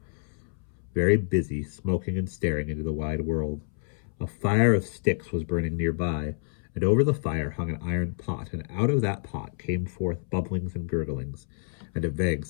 very busy, smoking and staring into the wide world. A fire of sticks was burning nearby, and over the fire hung an iron pot, and out of that pot came forth bubblings and gurglings, and a vague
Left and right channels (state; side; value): silent; right; 59 dB below the other